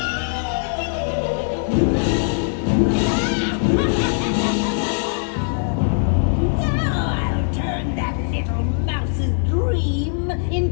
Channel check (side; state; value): right; silent; digital silence